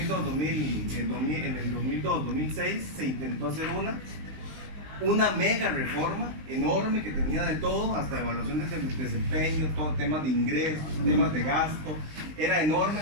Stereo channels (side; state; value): left; late; 19 ms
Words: se intentó hacer una mega reforma enorme que tenía de todo, hasta evaluación de desempeño, todo temas de ingresos, temas de gasto. Era enorme